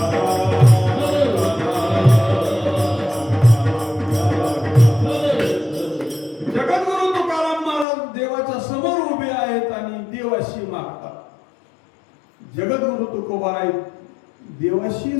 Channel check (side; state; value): right; drops out; at 7.9 s